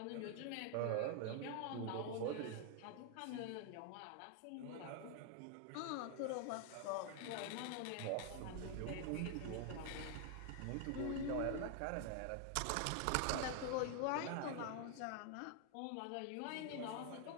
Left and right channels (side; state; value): both; different; correlation 0.00